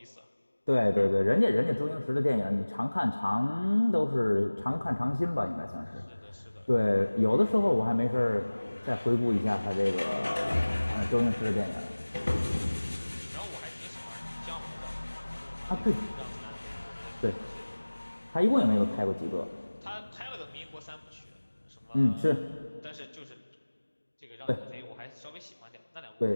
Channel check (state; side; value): inverted; both; correlation -1.00